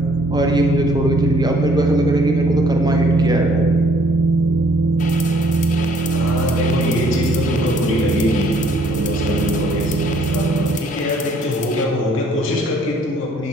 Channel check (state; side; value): normal; both; correlation 0.62